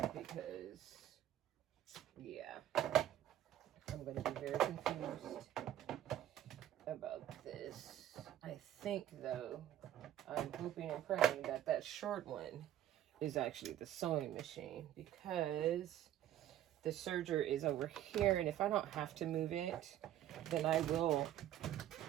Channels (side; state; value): left; quieter; 12.1 dB